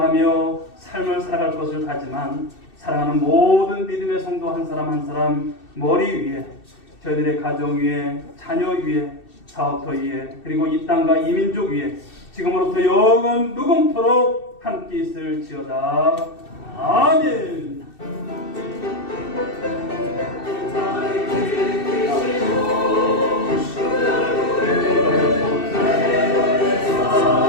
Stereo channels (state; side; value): late; right; 2.7 ms